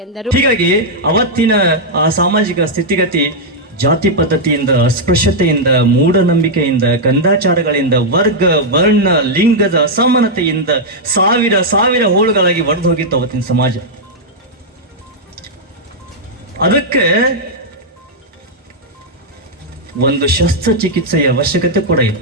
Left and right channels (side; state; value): both; normal; correlation -0.05